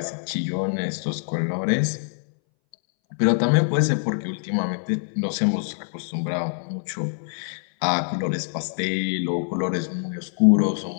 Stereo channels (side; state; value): right; silent; 61 dB below the other